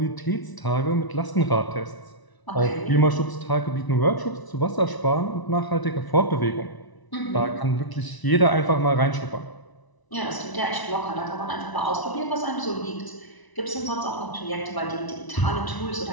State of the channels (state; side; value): late; right; 1.0 ms